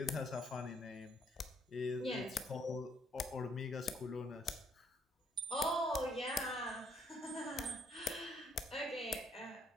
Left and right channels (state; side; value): normal; both; correlation 0.69